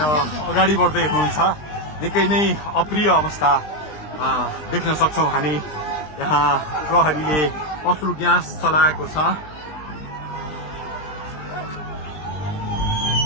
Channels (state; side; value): late; right; 20 ms